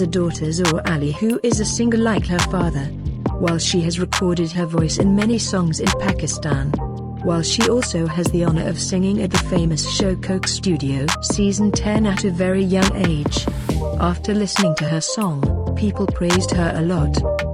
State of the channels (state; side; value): identical; both; correlation 1.00